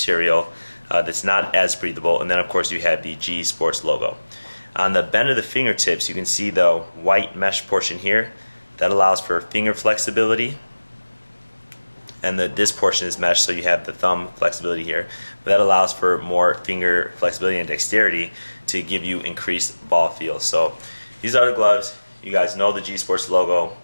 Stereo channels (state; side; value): inverted; both; correlation -1.00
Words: that's not as breathable. And then of course you have the G Sports logo. On the bend of the fingertips, you can see the white mesh portion here. That allows for finger flexibility. And this portion is mesh, so you have the thumb flexibility here. But that allows for more finger flexibility and dexterity to give you increased ball feel. So these are the gloves. You guys know the G Sports logo.